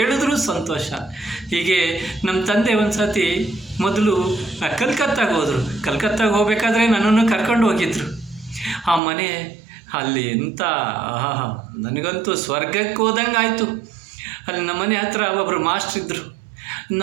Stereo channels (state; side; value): drops out; left; at 9.0 s